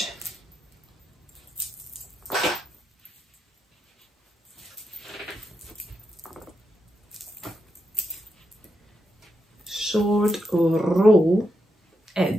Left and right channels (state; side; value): normal; both; correlation 0.83